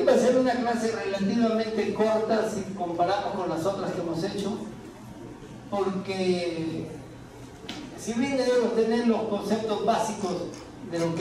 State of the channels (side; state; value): both; identical; correlation 1.00